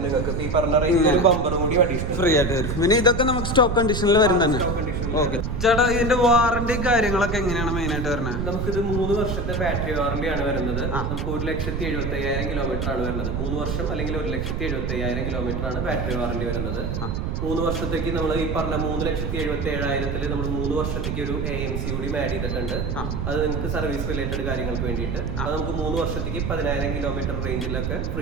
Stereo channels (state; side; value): noise; right; rumble, 2 dB below the sound